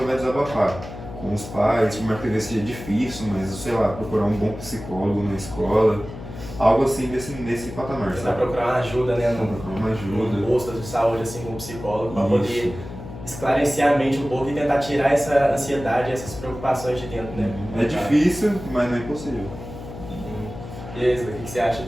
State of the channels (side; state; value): left; noise; hum, 12 dB below the sound